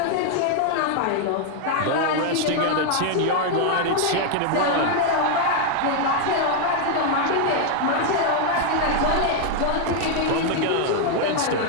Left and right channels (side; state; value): both; different; correlation 0.00